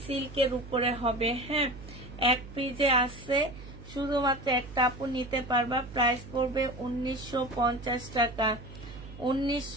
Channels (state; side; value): noise; right; hum, 15 dB below the sound